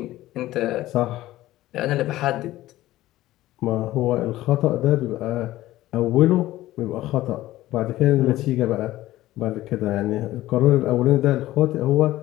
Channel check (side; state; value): right; quieter; 15.8 dB